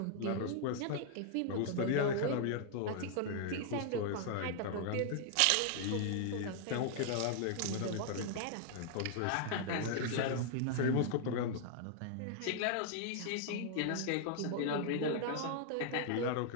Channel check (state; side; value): different; both; correlation -0.01